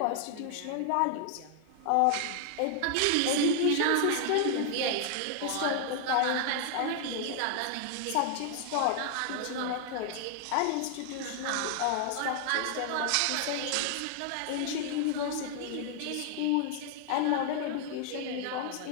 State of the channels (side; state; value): both; different; correlation 0.00